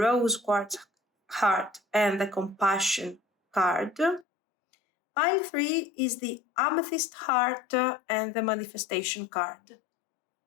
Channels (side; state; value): right; drops out; at 4.2 s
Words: quartz heart and the compassion card. Pile 3 is the Amethyst heart and the manifestation card.